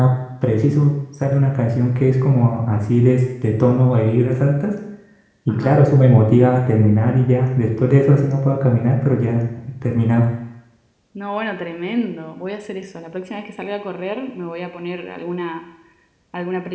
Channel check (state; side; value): identical; both; correlation 1.00